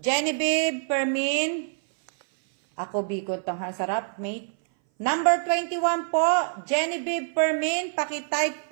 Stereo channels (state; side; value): silent; left; 59 dB below the other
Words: Permin. Ako, bikot ang sarap, mate. Number 21 po, Genevieve Permin. Pakitype